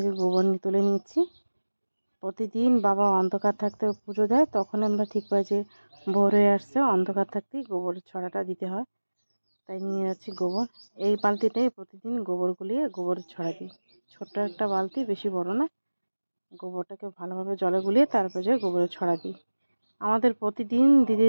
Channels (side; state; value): both; inverted; correlation -1.00